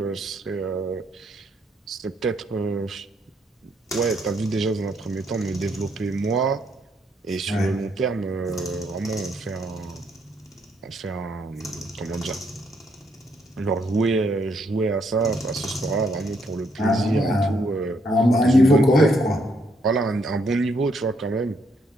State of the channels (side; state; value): both; normal; correlation 0.73